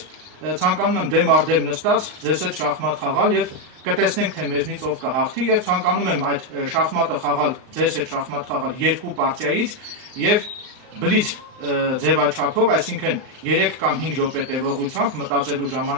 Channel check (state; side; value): late; left; 38 ms